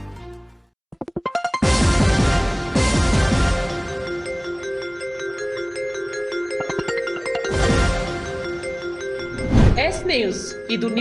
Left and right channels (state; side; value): identical; both; correlation 1.00